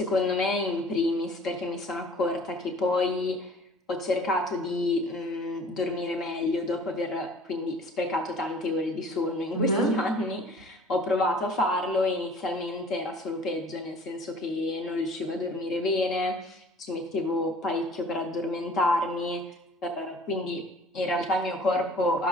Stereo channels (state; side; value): normal; both; correlation 0.50